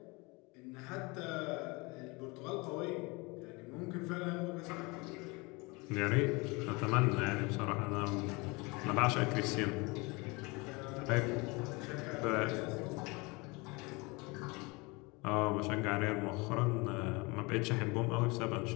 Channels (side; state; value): right; quieter; 26.4 dB